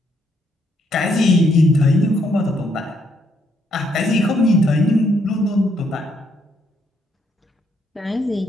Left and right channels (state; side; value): normal; both; correlation 0.73